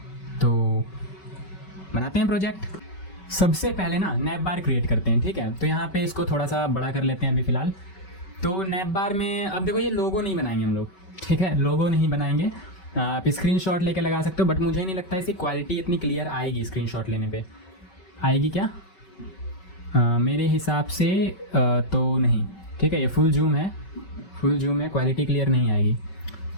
तो बनाते हैं प्रोजेक्ट। सबसे पहले ना नैप बार क्रिएट करते हैं, ठीक है। तो यहाँ पे इसको थोड़ा सा बड़ा कर लेते हैं अभी फ़िलहाल। तो नैप बार में अब देखो ये लोगो नहीं बनाएंगे हम लोग, ठीक है, लोगो नहीं बनाएंगे। आप स्क्रीनशॉट लेके लगा सकते हो, बट मुझे नहीं लगता इसकी क्वालिटी इतनी क्लियर आएगी। स्क्रीनशॉट लेने पे आएगी क्या? मेरे हिसाब से तो नहीं, ठीक है। ये फुल जूम है, क्वालिटी क्लियर नहीं आएगी।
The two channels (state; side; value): late; right; 5.3 ms